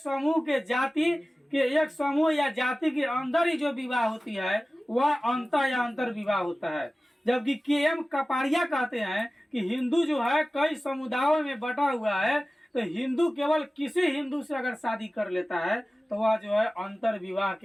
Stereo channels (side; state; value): both; normal; correlation 0.96